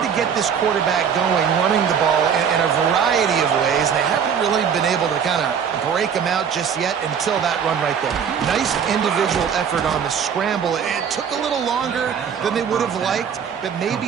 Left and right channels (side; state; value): left; quieter; 7.4 dB